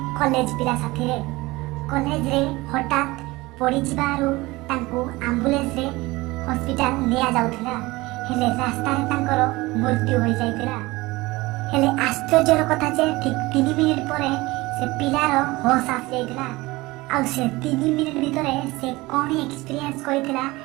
कॉलेज पिला साथीरे। कॉलेज रे हठात पड़ी जिबारु तांको एम्बुलेंस रे हॉस्पिटल निया जाउथिला, हेले रास्ता रे तांकर मृत्यु होई जाइथिला। हेले आश्चर्यर कथा जे ठीक 3 मिनिट परे से पिलार होश आसी जाइथिला आ से 3 मिनिट भितरे से कोन एक्सपीरियंस करिथिला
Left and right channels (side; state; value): left; quieter; 21.1 dB